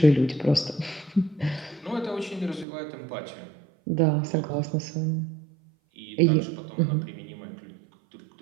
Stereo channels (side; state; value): left; drops out; at 2.7 s